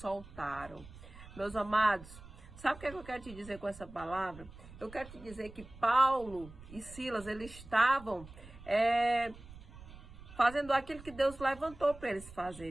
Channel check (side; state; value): right; noise; rumble, 17 dB below the sound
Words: Meus amados, sabe o que eu quero te dizer com essa palavra? Eu quero te dizer que Paulo e Silas, eles estavam fazendo aquilo que Deus levantou para eles